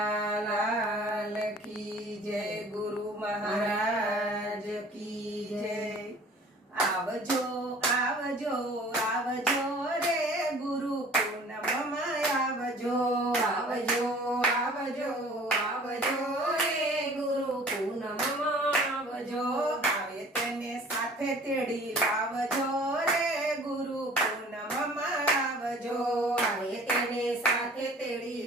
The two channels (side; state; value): both; normal; correlation 0.49